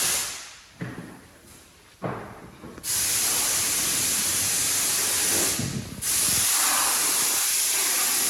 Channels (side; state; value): both; identical; correlation 1.00